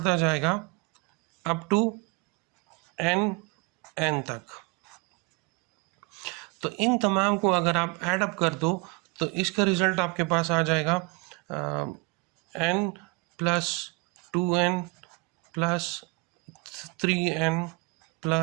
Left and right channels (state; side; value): quieter; left; 27.4 dB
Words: जाएगा अप टू n तक। तो इन तमाम को अगर आप ऐड अप कर दो तो इसका रिजल्ट आपके पास आ जाएगा n plus 2n plus 3n